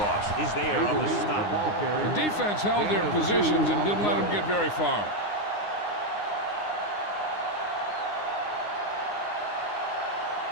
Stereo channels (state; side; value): late; right; 9.7 ms